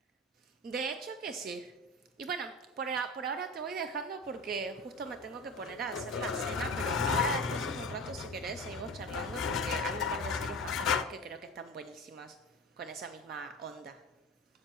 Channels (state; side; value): normal; both; correlation 0.31